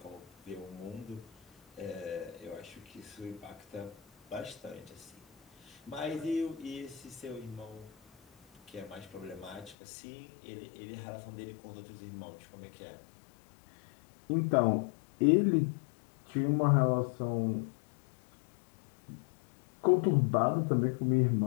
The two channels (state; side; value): drops out; right; at 9.8 s